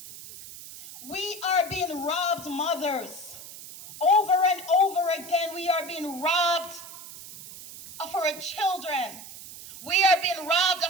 We are being robbed, mothers. Over and over again, we are being robbed of our children. We are being robbed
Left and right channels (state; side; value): noise; right; hiss, 14 dB below the sound